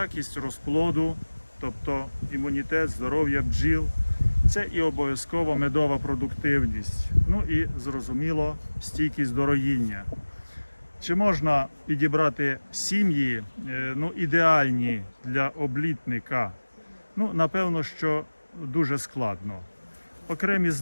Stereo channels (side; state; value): both; inverted; correlation -1.00